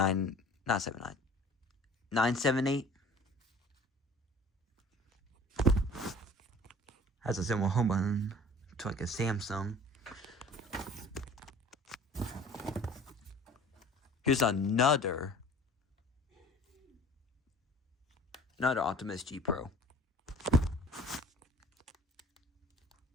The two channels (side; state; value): both; normal; correlation 0.48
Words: not 79, 978. Has a similar home button to like a Samsung. Here's another Optimus G Pro.